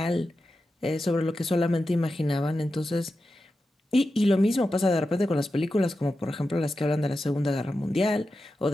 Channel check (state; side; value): normal; both; correlation 0.91